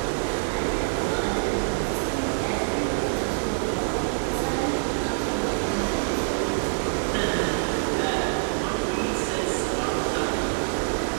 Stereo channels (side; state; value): left; silent; 61 dB below the other